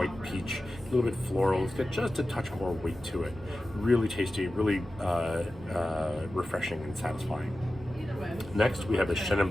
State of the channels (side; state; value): both; normal; correlation 0.94